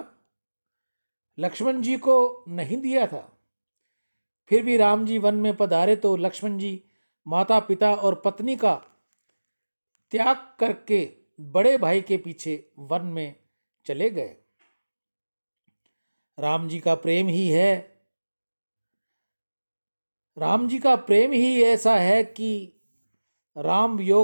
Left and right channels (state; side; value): inverted; both; correlation -1.00